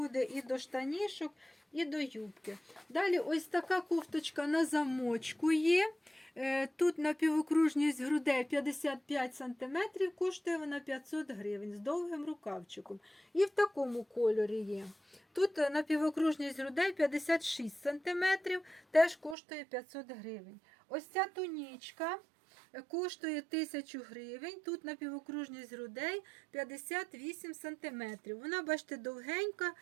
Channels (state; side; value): drops out; left; at 19.4 s